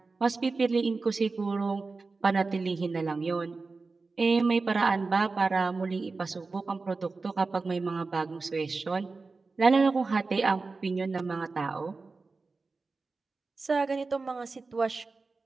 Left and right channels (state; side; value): quieter; left; 4.0 dB